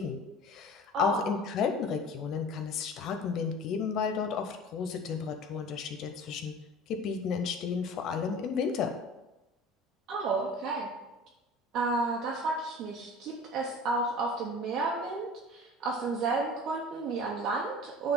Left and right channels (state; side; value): normal; both; correlation 0.40